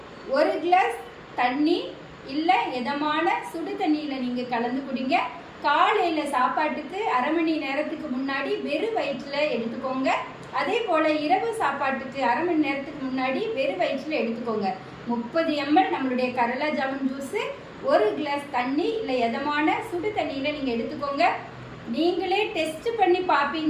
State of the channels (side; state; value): both; identical; correlation 1.00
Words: 1 கிளாஸ் தண்ணி இல்லை இதமான சுடு தண்ணியில் நீங்கள் கலந்து குடிங்க. காலையில் சாப்பாட்டுக்கு அரை மணி நேரத்துக்கு முன்னாடி வெறும் வயிற்றில் எடுத்துக்கோங்க. அதே போல் இரவு சாப்பாட்டுக்கு அரை மணி நேரத்துக்கு முன்னாடி வெறும் வயிற்றில் எடுத்துக்கோங்க. 30 ml நம்மளுடைய கரளா ஜாமுன் ஜூஸு 1 கிளாஸ் தண்ணி இல்லை இதமான சுடு தண்ணியில் நீங்கள் எடுத்துக்கோங்க. நீங்களே டெஸ்ட் பண்ணி